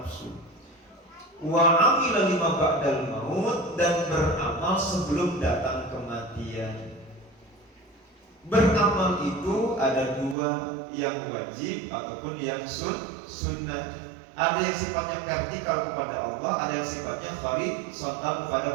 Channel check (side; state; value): left; drops out; at 10.4 s